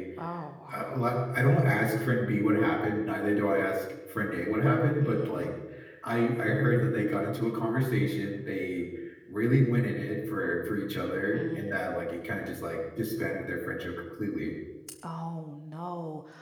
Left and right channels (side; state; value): both; identical; correlation 1.00